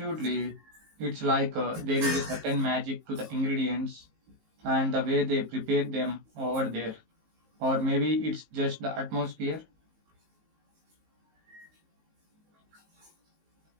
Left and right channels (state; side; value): late; left; 19 ms